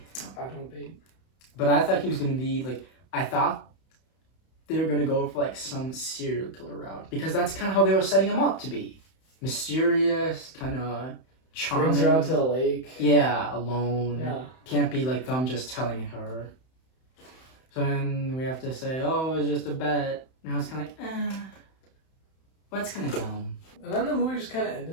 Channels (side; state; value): right; late; 31 ms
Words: I don't date. But I thought he was gonna be like. I thought they were gonna go for like some serial killer route because that's kind of how they were setting him up to be, mysterious, kind of charming. Brings her out to the lake. Yeah, alone. Yeah. Can't be like them just telling her. So then we have to say, oh, it was just a bet. Now it's kind of like, well, that's kind of dumb. And then the movie just kind of